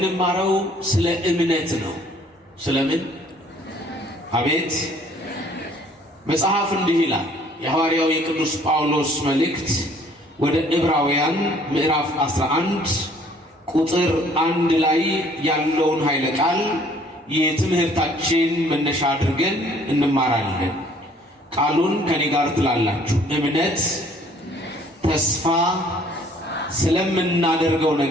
ስለ እምነት ነው። ስለምን? አቤት። መጽሐፍ እንዲህ ይላል። የሐዋርያው የቅዱስ ጳውሎስ መልእክት ወደ ዕብራውያን ምዕራፍ 11 ቁጥር 1 ላይ ያለውን ኃይለ ቃል የትምህርታችን መነሻ አድርገን እንማራለን። ቃሉን ከኔ ጋር ትላላችሁ። እምነት ተስፋ ስለምናደርገው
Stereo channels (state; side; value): normal; both; correlation 0.58